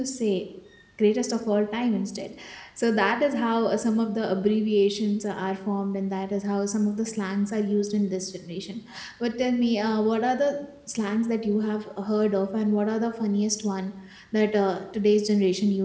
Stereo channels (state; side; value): identical; both; correlation 1.00